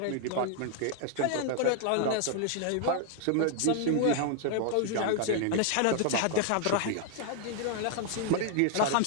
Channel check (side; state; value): both; different; correlation 0.00